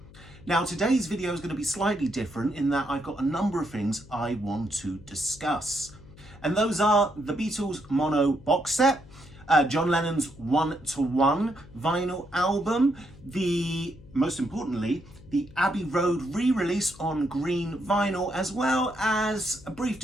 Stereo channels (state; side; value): noise; left; hum, 21 dB below the sound